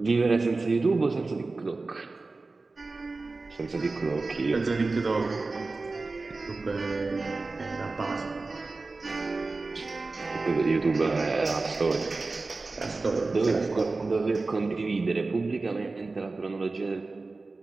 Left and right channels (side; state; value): left; quieter; 3.6 dB